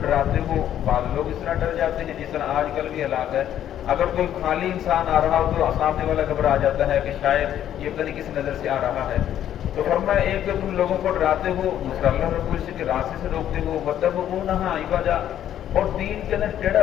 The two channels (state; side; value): quieter; right; 10.9 dB